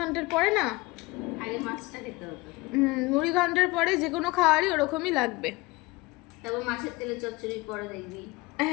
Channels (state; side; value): quieter; right; 22.7 dB